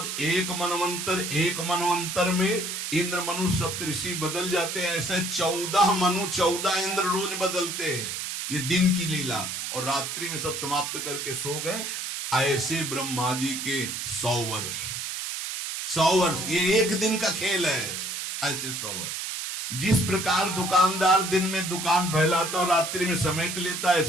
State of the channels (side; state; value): right; noise; hiss, 4 dB below the sound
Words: एक मनवंतर में इंद्र मनु सप्तऋषि बदल जाते हैं। ऐसे 14 मनु 14 इंद्र रोज बदलते हैं। ये दिन की लीला, और रात्रि में सब समाप्त करके सो गए। ऐसे ब्रह्मा जी के 100 वर्ष, 100 वर्ष, ये एक दिन का खेल है। ऐसे 100 वर्ष। जिस प्रकार दुकानदार दिन में दुकान फैलाता और रात्रि में समेट लेता,